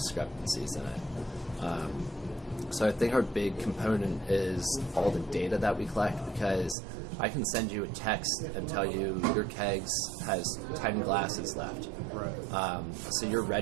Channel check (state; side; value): drops out; left; at 6.8 s